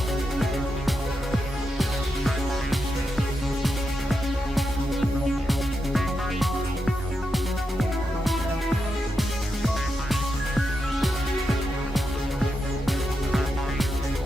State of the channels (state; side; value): normal; both; correlation 0.86